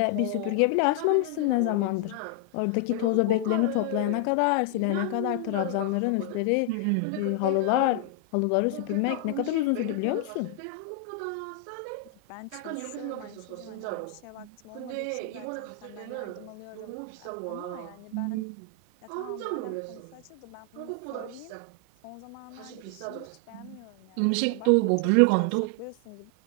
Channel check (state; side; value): different; both; correlation 0.00